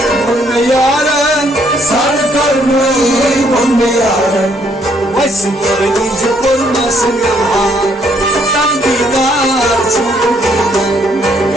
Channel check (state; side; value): normal; both; correlation 0.69